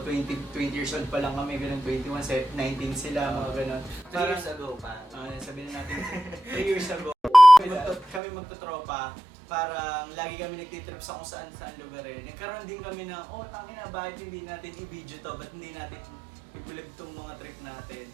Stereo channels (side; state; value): left; drops out; at 8.2 s